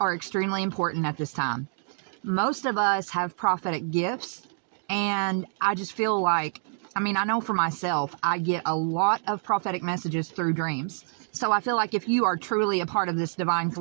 extremely important at this time. Most of us have prophetic gifts, and I just feel like, I know for myself, I get a lot of prophetic messages through dreams. So I feel like if you are truly a part of this divine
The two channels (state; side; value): silent; left; digital silence